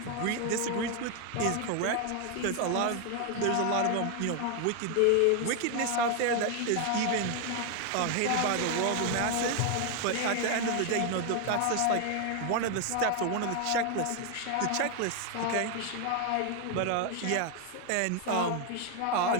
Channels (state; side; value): different; both; correlation 0.01